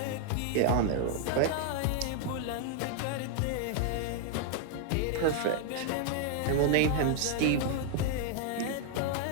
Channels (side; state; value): both; different; correlation 0.00